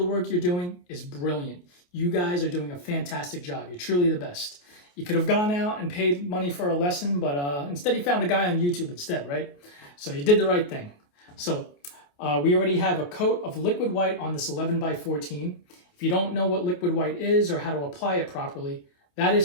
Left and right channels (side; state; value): right; late; 28 ms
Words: work you're doing is brilliant. You guys are doing a fantastic job. You're truly the best. You could have gone out and paid money for a lesson, but instead you found a guy on YouTube instead, right? So you did the right thing. So we already have a coat of liquid white on this 11 by 14. If you don't know what liquid white is or how to apply it properly, that